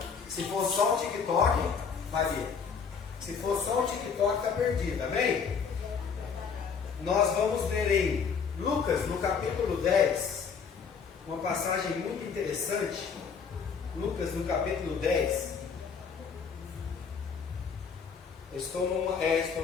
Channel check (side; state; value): right; quieter; 6.1 dB